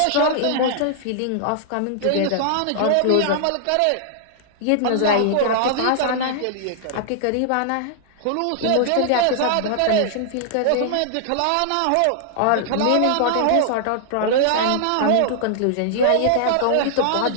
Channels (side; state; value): both; different; correlation -0.01